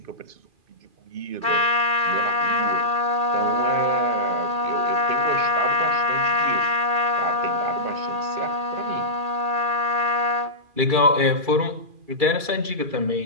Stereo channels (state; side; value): late; left; 2.3 ms